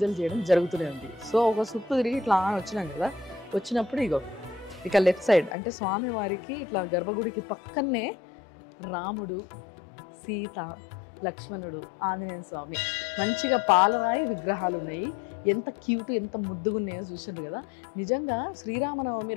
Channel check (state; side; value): drops out; right; at 5.6 s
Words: చేయడం జరుగుతూనే ఉంది. సో ఒక చుట్టూ తిరిగి ఇట్లా వచ్చినాం కదా, వచ్చినప్పుడు ఇక లెఫ్ట్ సైడ్ అంటే స్వామివారికి ఇట్లా గర్భగుడికి పక్కనే రాముడు, సీత, లక్ష్మణుడు, ఆంజనేయ స్వామి మంచిగా పాలరాయి విగ్రహాలు ఉన్నాయి. ఎంత క్యూట్, ఎంత ముద్దుగా ఉన్నాయో చూసారు కదా. నిజంగా శ్రీరామనవమి